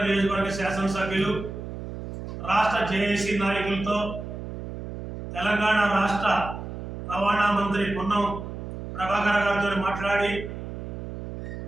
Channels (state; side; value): noise; right; hum, 8 dB below the sound